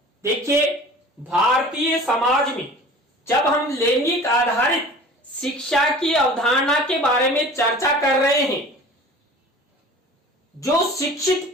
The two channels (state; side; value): normal; both; correlation 0.42